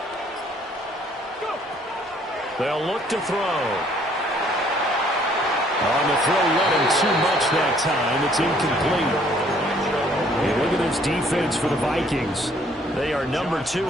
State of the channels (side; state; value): both; normal; correlation 0.62